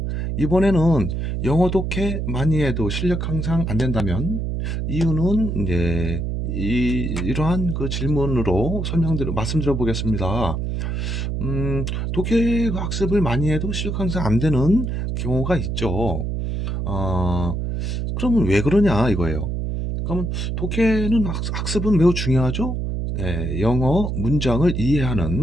이번에는 영어 독해 많이 해도 실력 향상 안 된다면 이유는 이제 이러한 그 질문으로 말씀드려 보겠습니다. 독해 학습을 많이 해도 실력 향상 안 되는 경우가 있죠. 어, 그러면 왜 그러냐 이거예요. 그러면 독해는 학습은 매우 중요하죠. 예, 영어 문장을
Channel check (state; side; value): noise; right; hum, 2 dB below the sound